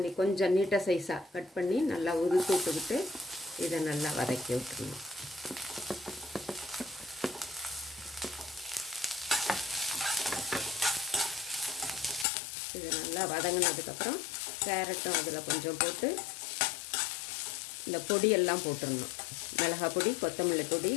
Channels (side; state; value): right; drops out; at 12.2 s